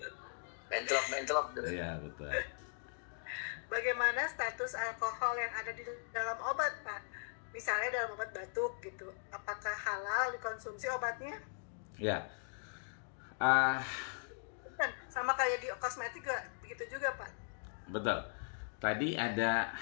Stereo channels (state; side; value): silent; right; digital silence